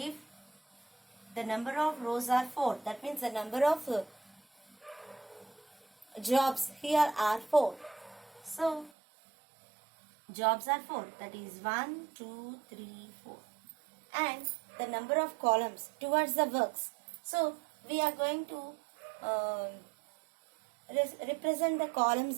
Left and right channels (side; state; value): left; drops out; at 8.9 s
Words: the number of rows are 4, that means the number of jobs here are 4. So jobs are 4, that is 1, 2, 3, 4. And the number of columns towards the works. So we are going to represent the columns